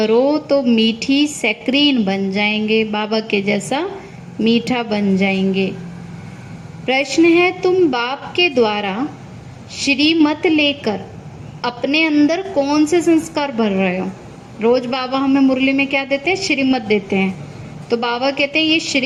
तो मीठी सैक्रीन बन जाएंगे, बाबा के जैसा मीठा बन जाएंगे। प्रश्न है, तुम बाप के द्वारा श्रीमत लेकर अपने अंदर कौन से संस्कार भर रहे हो? रोज बाबा हमें मुरली में क्या देते हैं? श्रीमत देते हैं। तो बाबा कहते हैं ये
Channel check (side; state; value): both; identical; correlation 1.00